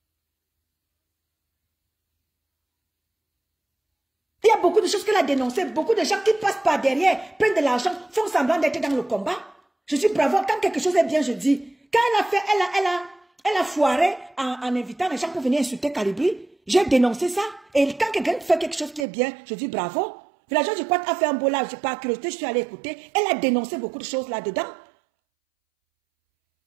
Il y a beaucoup de choses qu'elle a dénoncées, beaucoup de gens qui passent par derrière, prennent de l'argent, font semblant d'être dans le combat. Je dis bravo, quand quelque chose est bien, je dis. Quand elle a fait, elle a foiré en invitant les gens pour venir insulter Calibri, j'ai dénoncé ça. Et quand quelqu'un fait quelque chose qui est bien, je dis bravo. Villageois du Quad a fait un beau live, j'ai pas curiosité, je suis allée écouter. Elle a dénoncé beaucoup de choses là-dedans.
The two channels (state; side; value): drops out; left; at 19.1 s